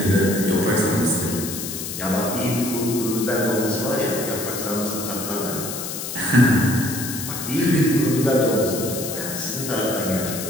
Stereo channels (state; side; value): noise; left; hiss, 6 dB below the sound